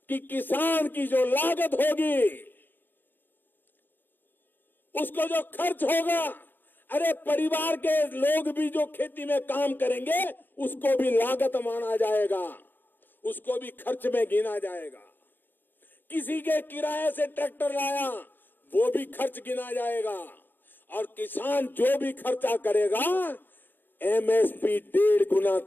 कि किसान की जो लागत होगी, उसको जो खर्च होगा, अरे परिवार के लोग भी जो खेती में काम करेंगे उसको भी लागत माना जाएगा, उसको भी खर्च में गिना जाएगा। किसी के किराए से ट्रैक्टर लाया वो भी खर्च गिना जाएगा और किसान जो भी खर्चा करेगा एमएसपी 1.5 गुना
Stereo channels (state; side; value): late; right; 0.093 ms